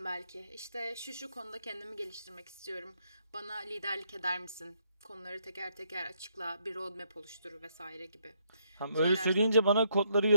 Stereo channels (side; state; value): both; inverted; correlation -0.74